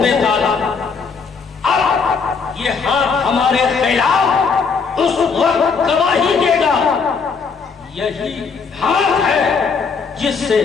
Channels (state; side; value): quieter; right; 5.3 dB